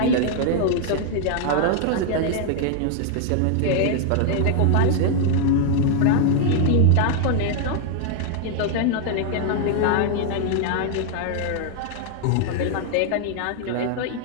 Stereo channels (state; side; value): different; both; correlation 0.00